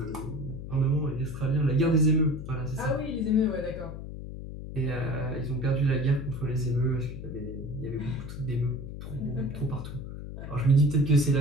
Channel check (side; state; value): left; noise; hum, 9 dB below the sound